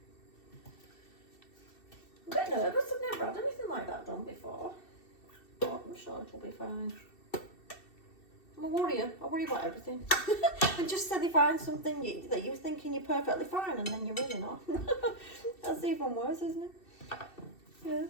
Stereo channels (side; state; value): right; late; 2.7 ms